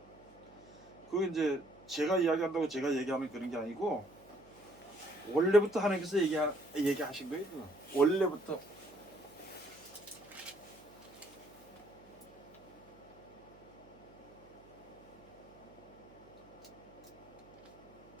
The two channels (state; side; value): noise; right; hum, 24 dB below the sound